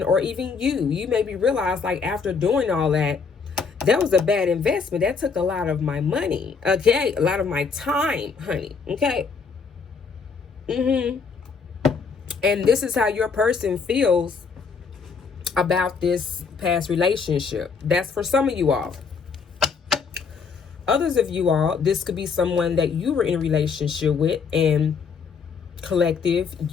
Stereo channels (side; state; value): right; quieter; 5.4 dB